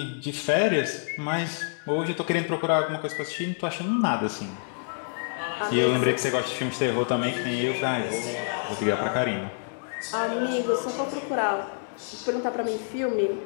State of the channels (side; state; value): right; silent; digital silence